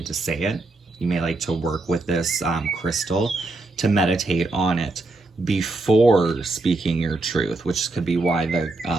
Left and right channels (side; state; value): left; quieter; 3.1 dB